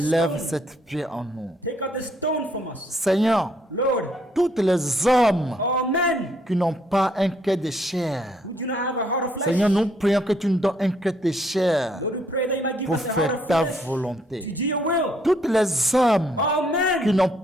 stone. cette pierre en nous. Take out the stone from us. Seigneur, Lord, tous les hommes all men qui n'ont pas un cœur de chair, who do not have a heart of flesh, Seigneur, nous prions que tu nous donnes un cœur de chair Lord, we pray that you might give pour us a heart faire of ta flesh to volonté. do your will. Tous les hommes All qui men n'ont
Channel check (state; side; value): normal; both; correlation 0.69